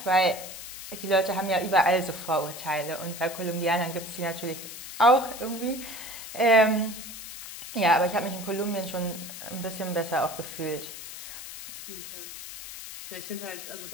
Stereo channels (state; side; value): noise; left; hiss, 11 dB below the sound